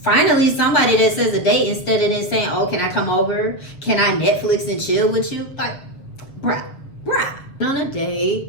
somebody that says a date instead of then saying, oh, can I come over? Can I Netflix and chill with you? Like, bruh. On a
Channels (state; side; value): late; right; 6.9 ms